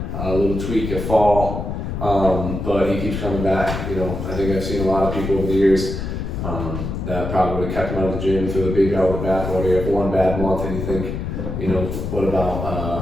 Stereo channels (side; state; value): left; noise; rumble, 4 dB below the sound